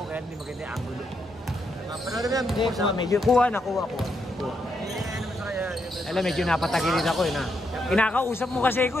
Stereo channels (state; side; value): normal; both; correlation 0.80